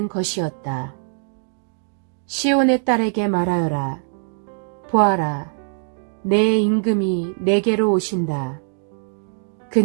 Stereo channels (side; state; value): left; silent; digital silence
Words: 것이었다. 시온의 딸에게 말하여라. 보아라, 내 임금이 내게로 오신다.